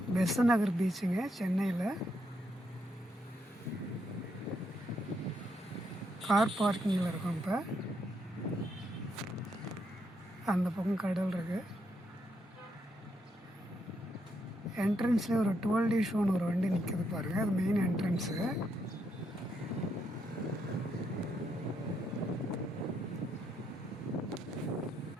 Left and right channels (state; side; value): normal; both; correlation 0.78